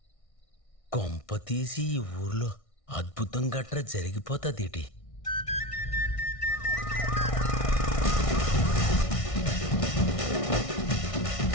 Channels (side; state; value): right; late; 1.6 ms